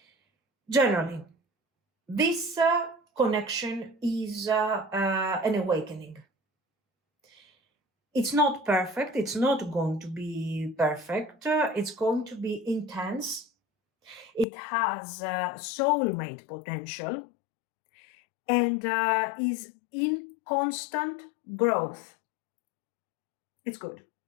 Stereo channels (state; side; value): drops out; right; at 14.5 s